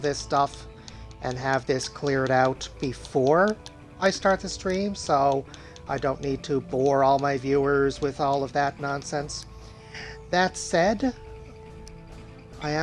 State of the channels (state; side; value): identical; both; correlation 1.00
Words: stuff and have this cleared out before I start the stream, so I don't need to bore all my viewers with all of that nonsense. That said, I